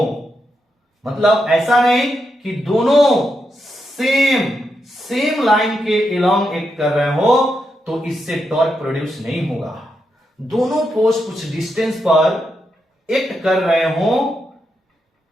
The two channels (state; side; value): normal; both; correlation 0.84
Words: मतलब ऐसा नहीं कि दोनों सेम लाइन के अलोंग एक्ट कर रहे हो, तो इससे टॉर्क प्रोड्यूस नहीं होगा। दोनों फोर्स कुछ डिस्टेंस पर एक्ट कर रहे हो,